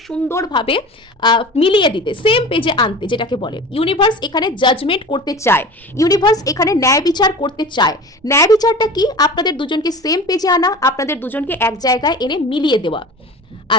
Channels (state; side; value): normal; both; correlation 0.36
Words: সুন্দরভাবে মিলিয়ে দিতে, সেম পেজে আনতে, যেটাকে বলে ইউনিভার্স এখানে জাজমেন্ট করতে চায়। ইউনিভার্স এখানে ন্যায় বিচার করতে চায়। ন্যায় বিচারটা কি? আপনাদের দুজনকে সেম পেজে আনা, আপনাদের দুজনকে এক জায়গায় এনে মিলিয়ে দেওয়া।